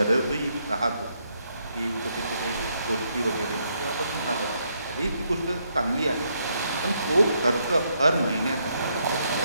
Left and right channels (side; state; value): both; inverted; correlation -0.76